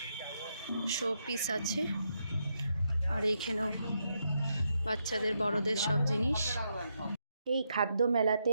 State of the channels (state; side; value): inverted; both; correlation -0.81